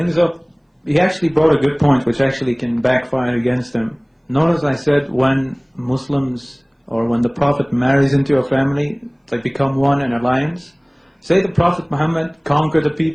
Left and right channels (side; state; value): both; identical; correlation 1.00